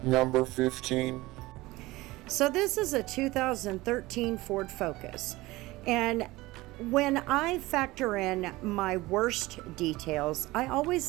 Number 15. So this is a 2013 Ford Focus, and when I factor in my worst details, I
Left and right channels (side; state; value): left; quieter; 19.7 dB